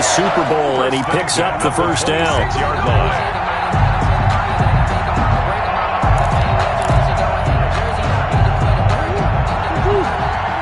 Super Bowl, and he picks up the first down. 6-yard line.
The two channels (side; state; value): both; identical; correlation 1.00